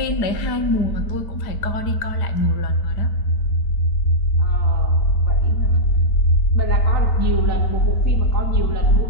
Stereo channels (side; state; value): right; late; 4.9 ms